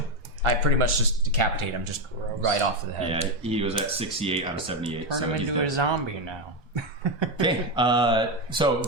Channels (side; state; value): both; normal; correlation 0.10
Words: I pretty much just decapitate him, just right off the head. Yeah, he was at 68 out of 78. Turn so him he's into a dead. zombie now. Okay, so